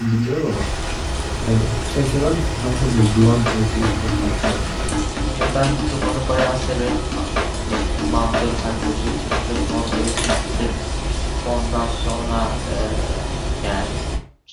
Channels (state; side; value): identical; both; correlation 1.00